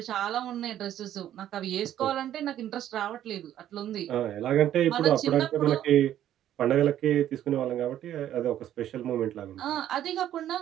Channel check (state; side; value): quieter; left; 11.6 dB